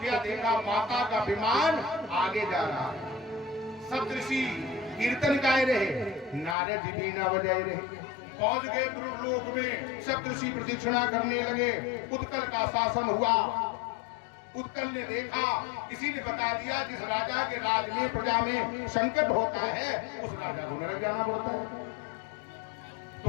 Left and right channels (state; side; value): drops out; right; at 6.6 s